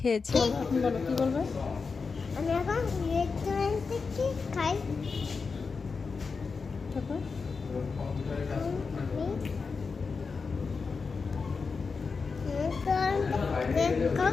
এখন বলো কি বলবে? আমি এখন রেস্টুরেন্ট থেকে খাই। তারপর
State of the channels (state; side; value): quieter; right; 4.8 dB